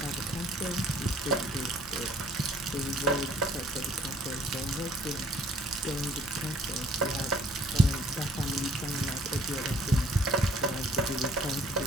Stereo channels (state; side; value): normal; both; correlation 0.59